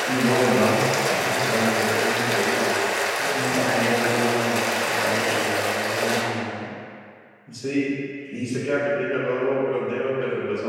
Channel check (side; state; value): both; identical; correlation 1.00